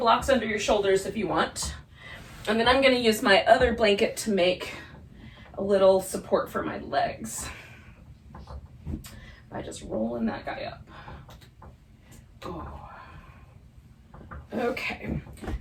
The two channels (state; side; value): identical; both; correlation 1.00